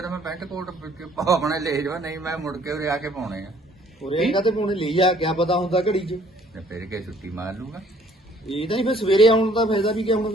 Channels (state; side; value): normal; both; correlation 0.59